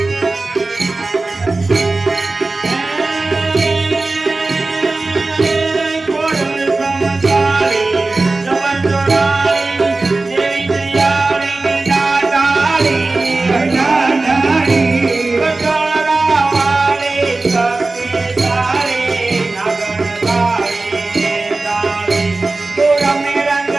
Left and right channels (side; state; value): left; quieter; 3.3 dB